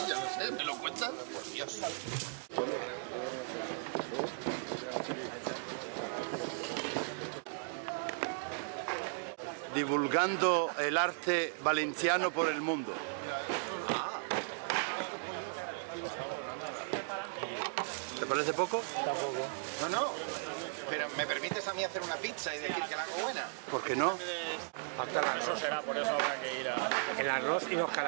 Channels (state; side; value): silent; left; digital silence